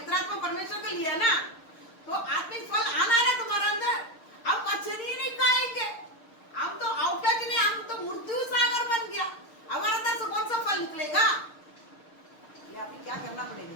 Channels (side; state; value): right; late; 6.5 ms